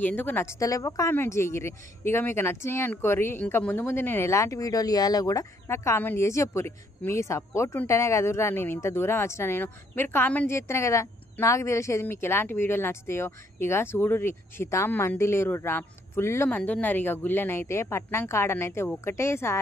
ఎందుకు నచ్చుతలేవో కామెంట్ చేయరి. ఇక మీకు నచ్చినాయి అనుకోరి. ఇంకా ముందు ముందు నేను ఎలాంటి వీడియోలు ఇవ్వాలో కూడా నాకు కామెంట్ చేసి చెప్పుర్రి. మీ సపోర్ట్ ఉంటేనే కదురా నేను ఇంత దూరం వచ్చినా. మీరు కామెంట్ చేస్తేనే కదా నాకు తెలిసేది మీకు ఎలాంటి వీడియోలు నచ్చుతాయో. ఇక చూడుర్రి, శితాం మంది లేరుర్రా, ఫుల్ మంది ఉన్నారు. ఇక గుళ్ళనైతే పట్నం కాడనైతే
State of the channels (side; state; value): both; normal; correlation 0.69